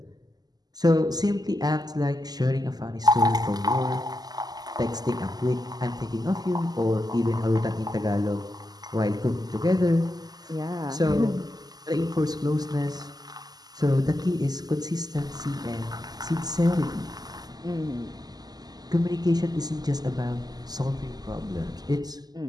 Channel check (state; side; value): late; left; 0.19 ms